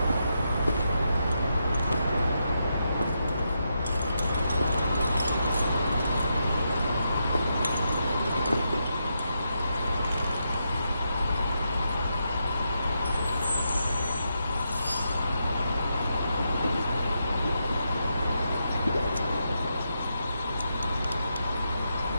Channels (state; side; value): inverted; both; correlation -0.83